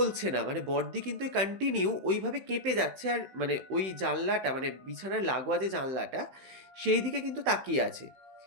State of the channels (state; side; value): late; left; 16 ms